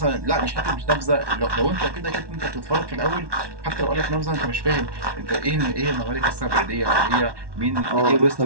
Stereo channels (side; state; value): left; late; 1.1 ms